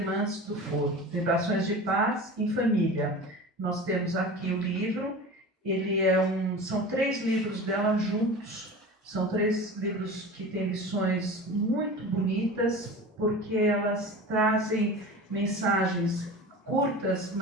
do Foro. Vibrações de Paz em Família. Nós temos aqui o livro. Ele são 3 livros dela juntos. São 3 livros que têm lições muito bonitas, porque elas trazem mensagens curtas,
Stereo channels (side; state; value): both; normal; correlation 0.34